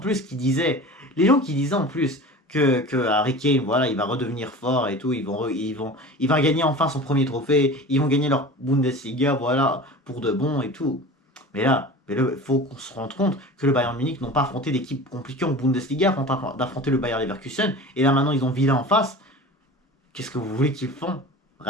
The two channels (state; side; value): normal; both; correlation 0.36